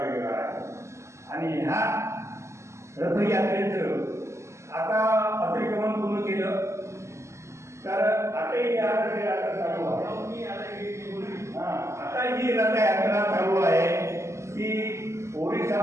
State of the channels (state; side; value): late; left; 0.13 ms